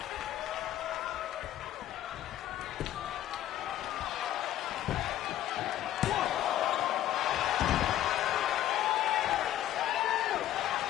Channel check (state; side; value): quieter; right; 12.7 dB